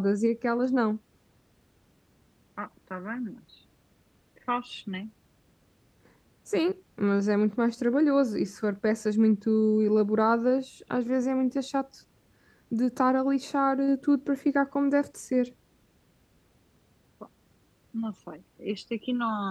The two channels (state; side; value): identical; both; correlation 1.00